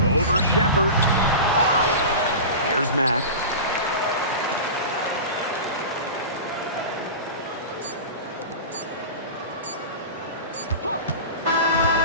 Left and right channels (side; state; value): both; inverted; correlation -0.30